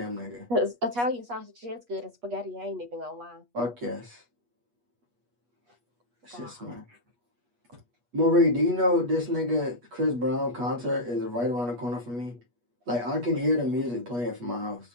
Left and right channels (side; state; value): left; late; 8.3 ms